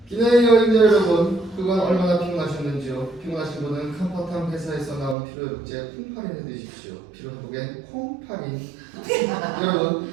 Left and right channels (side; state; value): left; drops out; at 5.2 s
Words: 기내 여행자 여러분, 그간 얼마나 피곤하셨는지요? 피곤하신 분은 컴포탐 회사에서 나온 피로회복제 콩파린을 드십시오. 피로회복엔 콩파린. 여러분,